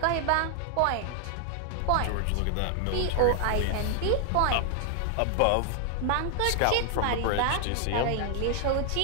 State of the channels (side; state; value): both; different; correlation 0.00